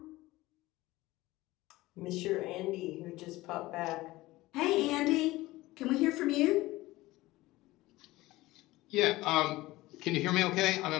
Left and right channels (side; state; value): right; quieter; 18.7 dB